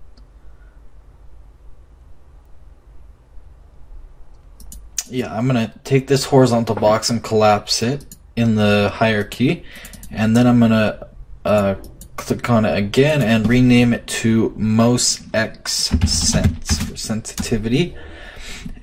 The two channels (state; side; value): identical; both; correlation 1.00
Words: I'm gonna take this horizontal box and collapse it in the hierarchy, and then I'm gonna click on it again and rename it to most x sense for sensitivity.